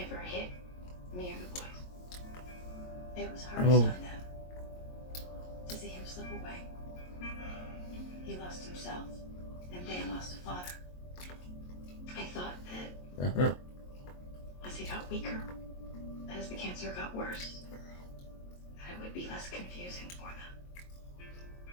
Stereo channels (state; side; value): late; right; 22 ms